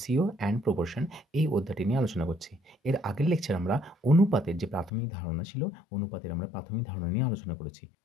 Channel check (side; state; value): right; drops out; at 4.9 s